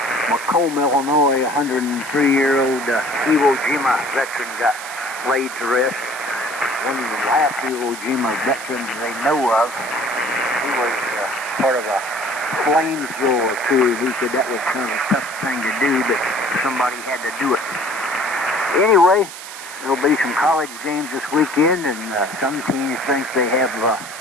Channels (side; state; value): right; noise; hiss, 12 dB below the sound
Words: Macomb, Illinois, a 103-year-old Iwo Jima veteran got laid to rest. One of the last Iwo Jima veterans they know of. He was part of a flamethrower crew. He said that was kind of a tough thing to do, but somebody had to do it. Anyway, there'll be some college games this weekend, and some teams think they have